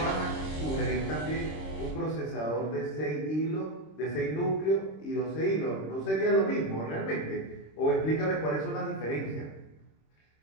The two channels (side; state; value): right; late; 26 ms